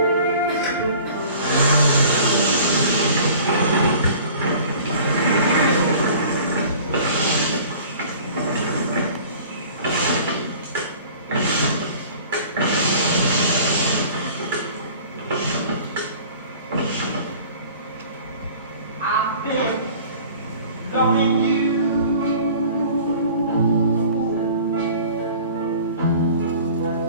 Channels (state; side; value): inverted; both; correlation -0.46